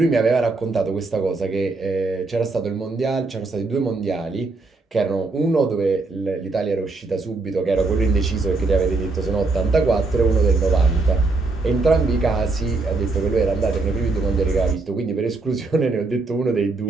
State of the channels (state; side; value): quieter; left; 3.6 dB